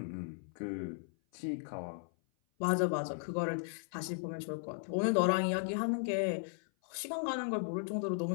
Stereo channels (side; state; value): right; silent; 54 dB below the other